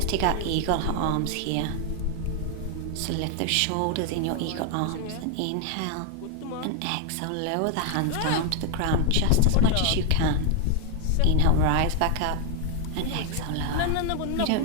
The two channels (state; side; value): different; both; correlation 0.00